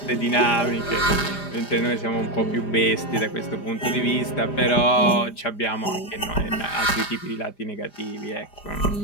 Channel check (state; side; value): late; right; 5.0 ms